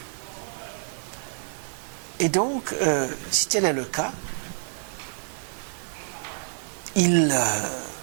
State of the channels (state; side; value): silent; left; 60 dB below the other